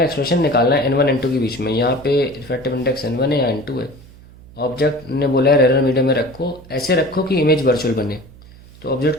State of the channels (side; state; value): right; noise; hum, 22 dB below the sound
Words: expression निकालना है n1 n2 के बीच में. यहाँ पे रिफ्रैक्टिव इंडेक्स n1 है या n2 है. ऑब्जेक्ट ने बोला है रेयर मीडियम में रखो, ऐसे रखो कि इमेज वर्चुअल बने. तो ऑब्जेक्ट